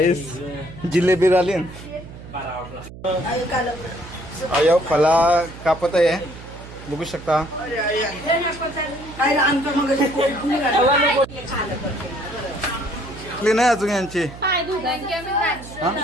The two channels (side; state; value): right; noise; hum, 15 dB below the sound